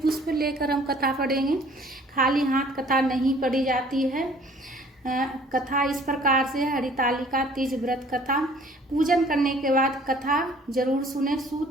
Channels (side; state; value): both; normal; correlation 0.54